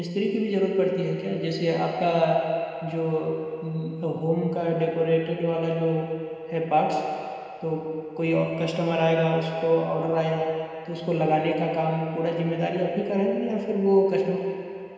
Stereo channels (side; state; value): both; identical; correlation 1.00